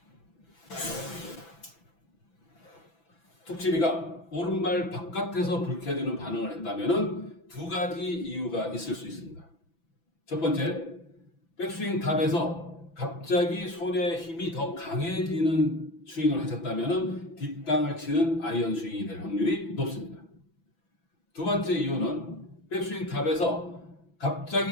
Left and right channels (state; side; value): late; right; 6.0 ms